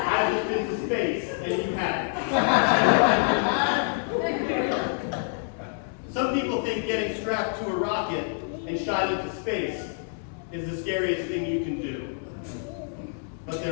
just been to space, and you haven't. Some people think getting strapped to a rocket and shot into space is the scariest thing you can do. But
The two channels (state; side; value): silent; right; digital silence